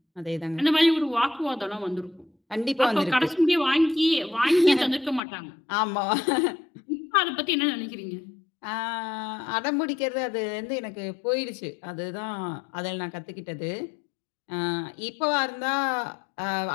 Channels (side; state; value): right; drops out; at 5.2 s